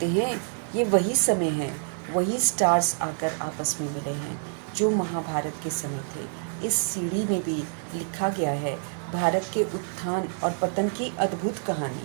हैं ये वही समय है, वही स्टार्स आकर आपस में मिले हैं जो महाभारत के समय थे। इस सीढ़ी में भी लिखा गया है भारत के उत्थान और पतन की अद्भुत कहानी,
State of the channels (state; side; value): silent; left; 60 dB below the other